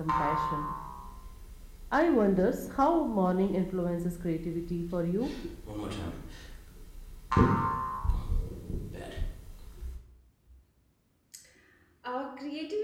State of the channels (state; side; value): identical; both; correlation 1.00